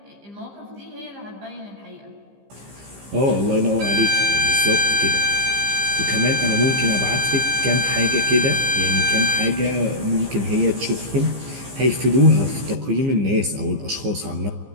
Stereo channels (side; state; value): left; late; 15 ms